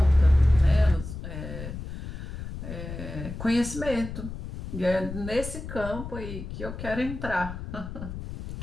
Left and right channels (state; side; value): noise; left; rumble, 9 dB below the sound